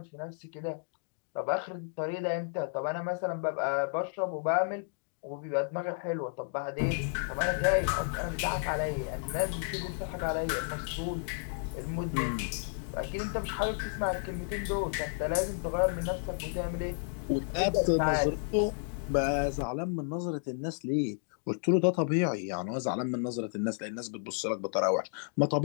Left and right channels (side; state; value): right; silent; digital silence